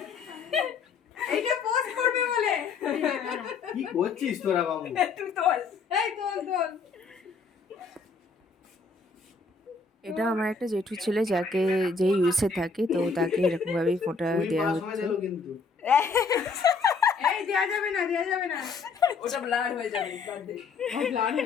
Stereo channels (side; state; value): right; quieter; 4.7 dB